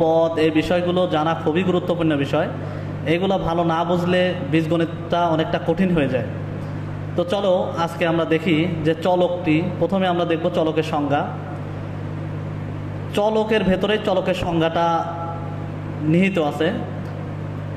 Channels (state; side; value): identical; both; correlation 1.00